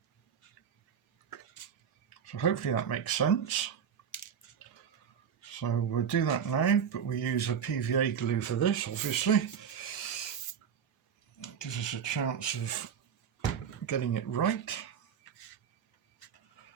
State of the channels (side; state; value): left; quieter; 7.8 dB